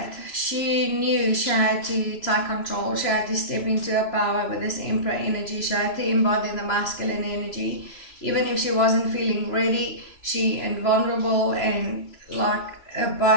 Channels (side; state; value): right; late; 3.0 ms